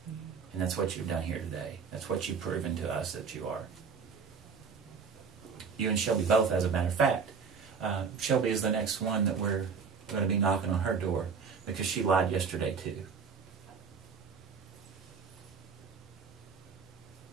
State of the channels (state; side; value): quieter; left; 5.8 dB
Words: And that's what you've done here today. That's what you've proven to us that you are. You and Shelby both, as a matter of fact. Shelby is the next one that we're going to be knocking on her door because she lied yesterday too.